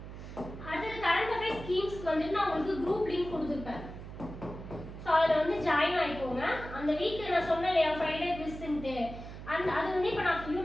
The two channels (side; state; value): right; noise; hum, 11 dB below the sound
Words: அடுத்தது கரண்ட் அஃபேர்ஸ் ஸ்கீம்ஸ்க்கு வந்துட்டு நான் உங்களுக்கு குரூப் லிங்க் கொடுத்துருப்பேன். ஸோ அதில் வந்து ஜாயின் ஆகிக்கோங்க. அந்த வீக் நான் சொன்னேன் இல்லையா, ஃப்ரைடே குவிஸ்ன்ட்டு, அது வந்து இப்போ நான்